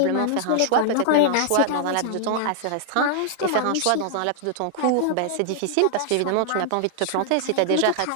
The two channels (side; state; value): both; different; correlation -0.01